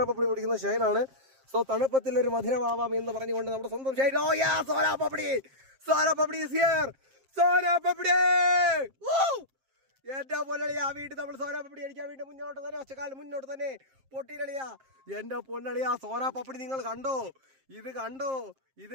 പപ്പടി പൊട്ടിക്കുന്ന ഷൈനാണ്. സോ തണുപ്പത്തിൽ ഒരു മധുരമാവാം എന്ന് പറഞ്ഞുകൊണ്ട് നമ്മുടെ സ്വന്തം ഷൈൻ. ഓ യാ, സോന പപ്പടി ഈസ് ഹിയർ. സോന പപ്പടി എന്റെ പൊന്നളിയാ, വീട്ടിൽ നമ്മൾ സോന പപ്പടി അടിക്കാൻ വേണ്ടി മുന്നോട്ട് തന്നെ, ഒച്ചക്കാലം മുന്നോട്ട് തന്നെ പൊട്ടിയിളിയാ. എന്റെ പൊന്നളിയാ, സോന പപ്പടി നിങ്ങൾ കണ്ടോ? ഇത്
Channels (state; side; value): late; left; 7.5 ms